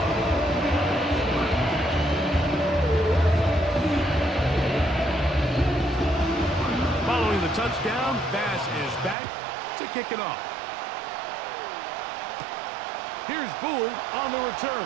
Following the touchdown, Bass is back to kick it off. Here's Gould on the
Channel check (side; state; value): left; drops out; at 9.2 s